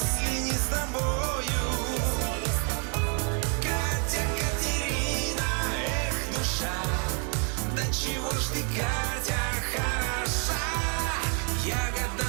не с тобою. Катя, Катерина, эх, душа, да чего ж ты, Катя, хороша, ягода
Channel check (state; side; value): quieter; left; 39.8 dB